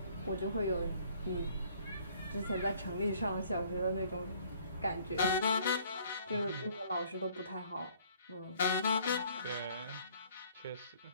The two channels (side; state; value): both; inverted; correlation -0.59